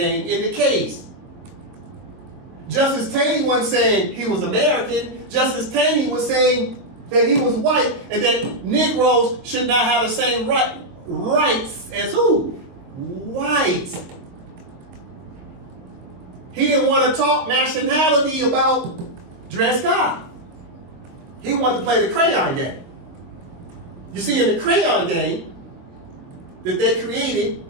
in the case. Justice Taney wasn't saying he was American. Justice Taney was saying that he was white and that Negroes should not have the same rights as who? Whites. He didn't want to talk nationality about Dred Scott. He wanted to play the crayon game. You see, in the crayon game that they created,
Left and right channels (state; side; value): late; left; 22 ms